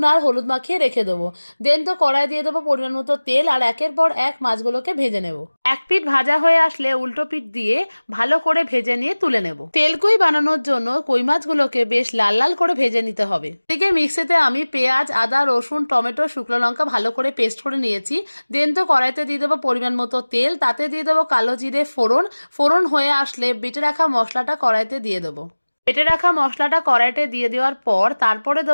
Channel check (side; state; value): both; inverted; correlation -1.00